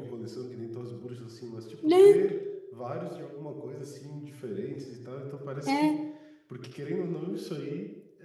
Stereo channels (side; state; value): both; identical; correlation 1.00